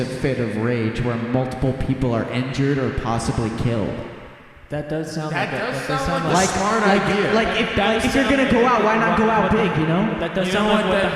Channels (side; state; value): both; identical; correlation 1.00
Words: fit of rage where multiple people are injured or possibly killed. That does sound like a smart idea. If you're gonna go out, why not go out big, you know? That does sound like what the